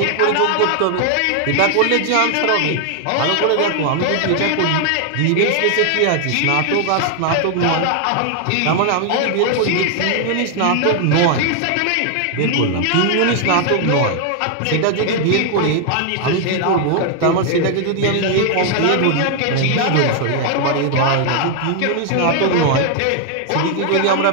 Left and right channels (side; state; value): both; different; correlation 0.00